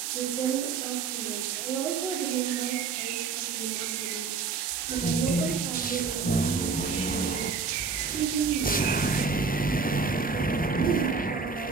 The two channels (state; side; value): quieter; left; 5.1 dB